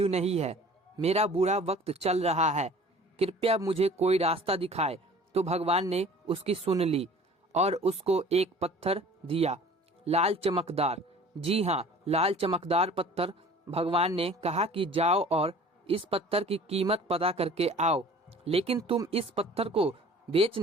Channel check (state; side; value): normal; both; correlation 0.47